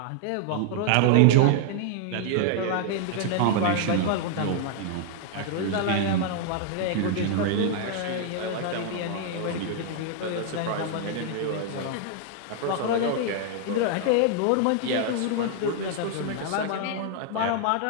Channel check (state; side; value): different; both; correlation 0.00